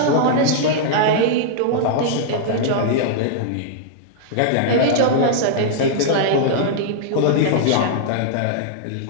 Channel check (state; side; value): different; both; correlation -0.01